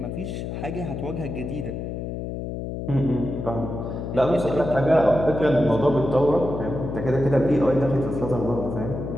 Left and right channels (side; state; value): left; noise; hum, 6 dB below the sound